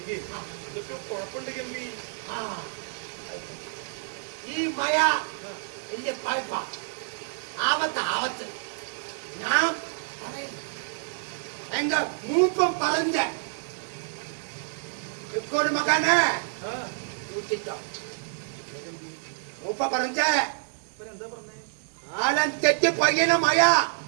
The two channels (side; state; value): left; silent; digital silence